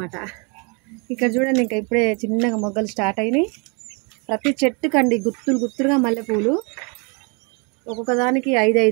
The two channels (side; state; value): left; quieter; 32.9 dB